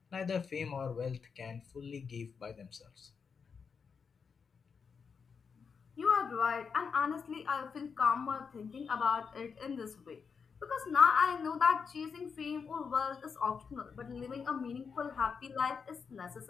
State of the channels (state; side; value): quieter; right; 5.9 dB